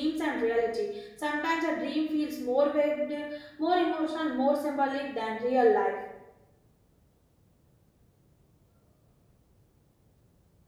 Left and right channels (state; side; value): identical; both; correlation 1.00